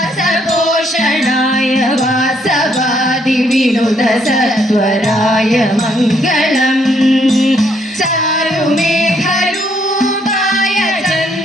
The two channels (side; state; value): both; normal; correlation 0.70